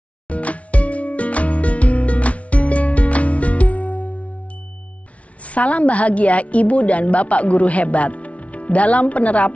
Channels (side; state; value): right; late; 0.065 ms